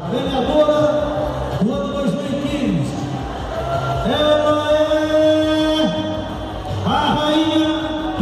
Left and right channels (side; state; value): both; identical; correlation 1.00